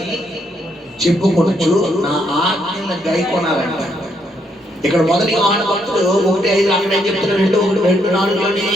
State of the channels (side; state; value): both; normal; correlation 0.74